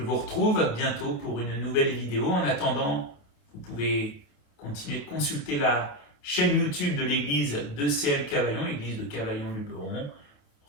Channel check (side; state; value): right; late; 28 ms